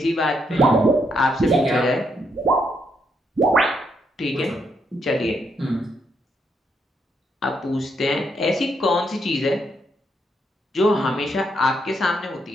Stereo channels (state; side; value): normal; both; correlation 0.77